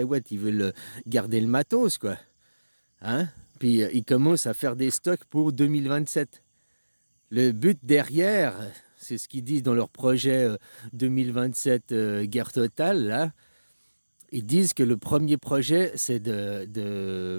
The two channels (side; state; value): both; inverted; correlation -1.00